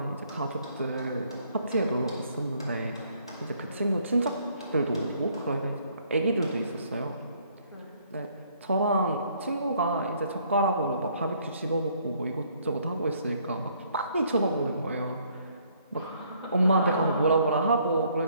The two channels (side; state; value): both; inverted; correlation -0.65